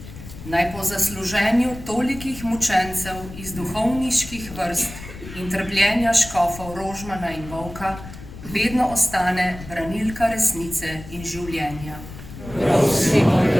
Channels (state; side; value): noise; left; rumble, 14 dB below the sound